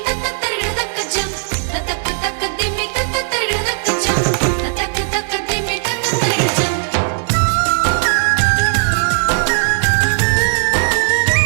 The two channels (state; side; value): silent; left; digital silence